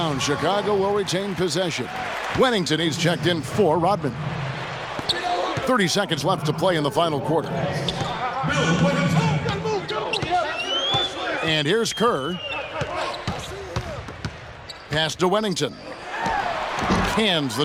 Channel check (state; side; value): identical; both; correlation 1.00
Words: Chicago will retain possession. Wennington, he's checked in for Rodman. 30 seconds left to play in the final quarter. And here's Kerr. Pass to Wennington. Cans the